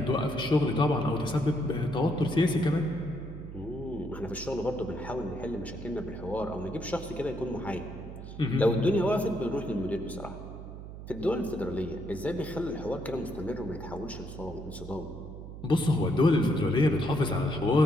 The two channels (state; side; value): noise; right; hum, 11 dB below the sound